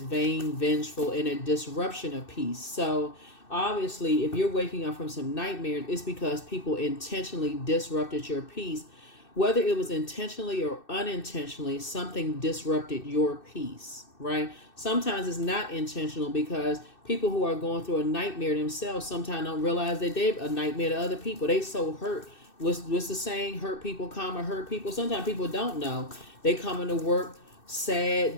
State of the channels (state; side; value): late; right; 2.6 ms